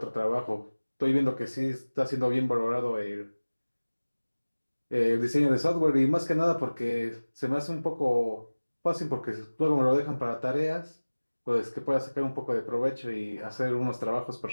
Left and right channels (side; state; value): both; inverted; correlation -1.00